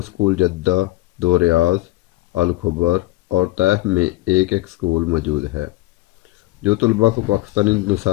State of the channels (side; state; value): right; quieter; 18.8 dB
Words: جدہ، 2 ریاض، الخبر اور طیف میں ایک اسکول موجود ہے، جو طلباء کو پاکستانی